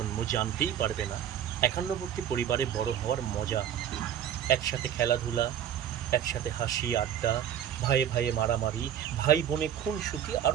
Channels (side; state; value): left; quieter; 9.9 dB